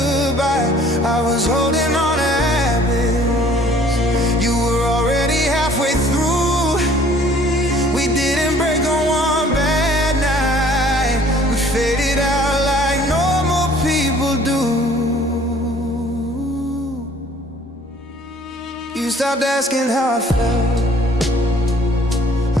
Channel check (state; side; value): normal; both; correlation 0.55